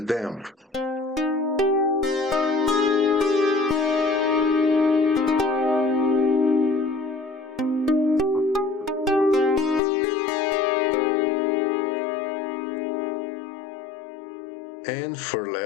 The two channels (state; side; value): drops out; right; at 9.8 s